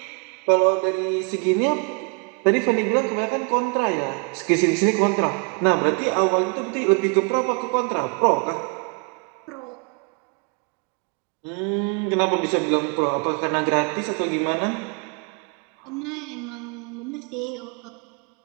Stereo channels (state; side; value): quieter; left; 34.6 dB